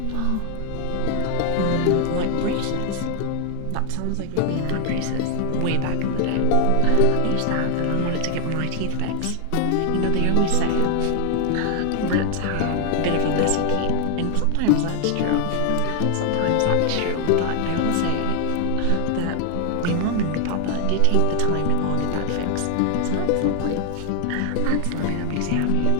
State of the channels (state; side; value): different; both; correlation 0.00